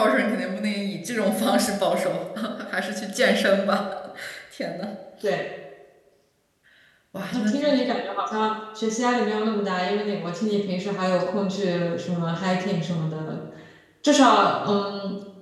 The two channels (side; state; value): both; identical; correlation 1.00